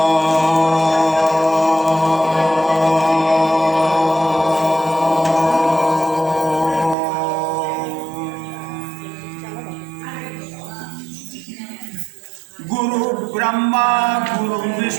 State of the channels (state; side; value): drops out; left; at 7.0 s